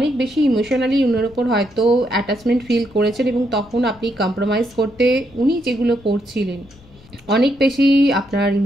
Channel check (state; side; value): noise; left; rumble, 25 dB below the sound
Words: বেশি ইমোশনালি উনার উপর হয়তো অ্যাটাচমেন্ট ফিল করেছেন এবং তখন আপনি কম্প্রোমাইজ করতে উনি যেগুলো করছিলেন, অনেক বেশি আপনার